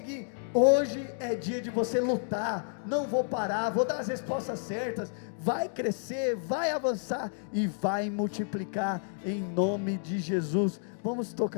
Hoje é dia de você lutar. Não vou parar, vou dar as respostas certas. Vai crescer, vai avançar e vai multiplicar em nome de Jesus. Vamos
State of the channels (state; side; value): silent; right; digital silence